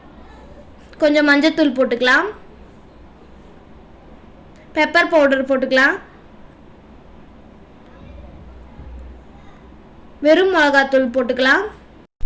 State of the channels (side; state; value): both; identical; correlation 1.00